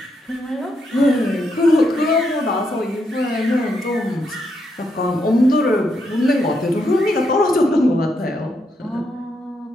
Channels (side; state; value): both; normal; correlation 0.79